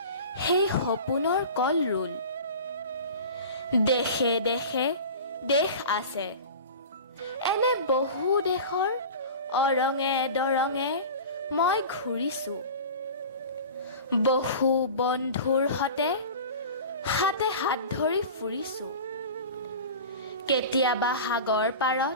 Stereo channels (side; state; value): both; inverted; correlation -0.35